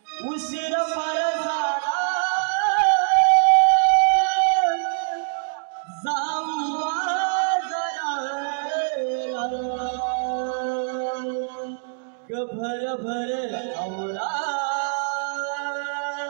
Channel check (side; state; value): left; silent; digital silence